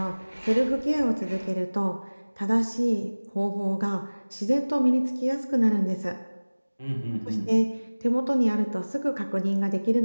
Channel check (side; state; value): both; inverted; correlation -1.00